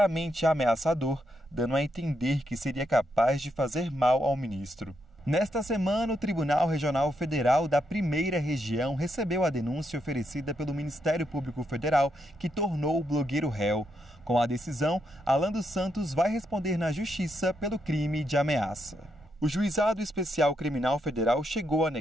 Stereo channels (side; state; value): both; normal; correlation 0.80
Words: ameaçador, dando a entender que seria capaz de fazer mal ao ministro. Nesta semana, o Tribunal Regional Federal da Primeira Região recebeu a denúncia oferecida pelo Ministério Público Federal, que tornou o blogueiro réu. Com a decisão, Alan dos Santos vai responder na Justiça pelo crime de ameaça. O Juizado Especial Criminal Federal chegou a